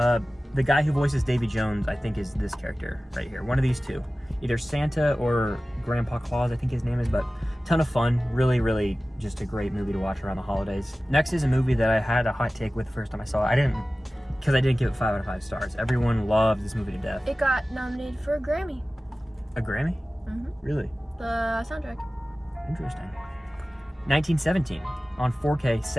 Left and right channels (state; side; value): normal; both; correlation 0.96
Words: The guy who voices Davy Jones, I think, is this character right here. One of these two. Either Santa or Grandpa Claus, I think his name is, but ton of fun. Really, really just a great movie to watch around the holidays. Next is a movie that I had a hot take with the first time I saw it. Because I didn't give it 5 out of 5 stars. Everyone loves this movie to death. It got nominated for a Grammy. A Grammy? Mm-hmm. Really? The soundtrack. Interesting. 1917 on 4K,